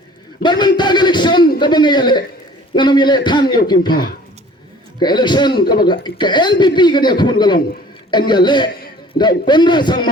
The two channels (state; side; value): normal; both; correlation 0.50